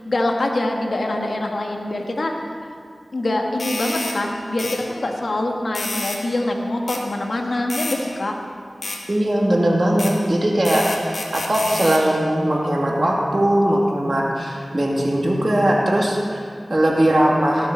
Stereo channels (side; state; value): both; normal; correlation 0.97